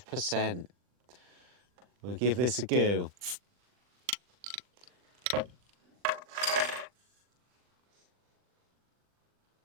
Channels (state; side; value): late; left; 40 ms